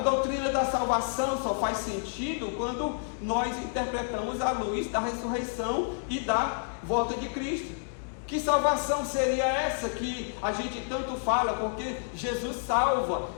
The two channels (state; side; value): silent; right; digital silence